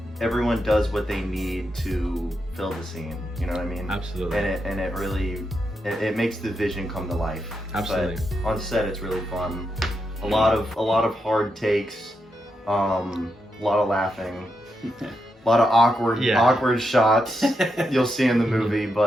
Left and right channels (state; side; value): normal; both; correlation 0.84